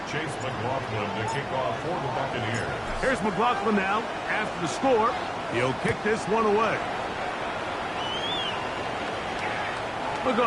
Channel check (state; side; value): identical; both; correlation 1.00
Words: Chase McLaughlin Here's McLaughlin now. After the score, he'll kick this one away. We'll go